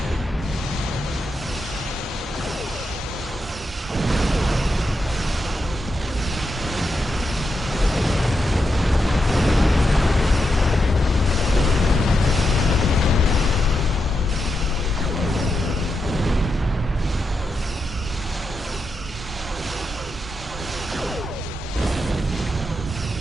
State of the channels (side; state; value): both; normal; correlation 0.86